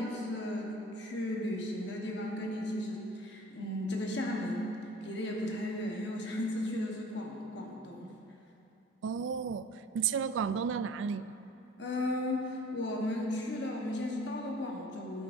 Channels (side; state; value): both; normal; correlation 0.48